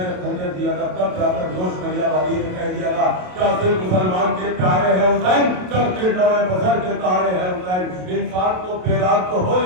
खंजर दिया था, तब जाकर जोश नैया बागी ने कह दिया था, क्या सिर्फ मुसलमान के प्यारे हैं हुसैन, चलते नवे बसर के तारे हैं हुसैन। इंसान को बेदाग तो हो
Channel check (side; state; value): left; late; 27 ms